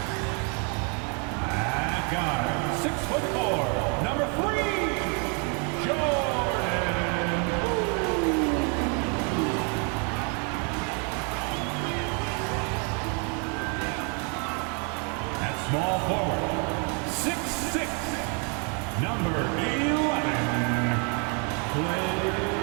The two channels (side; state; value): left; quieter; 36.3 dB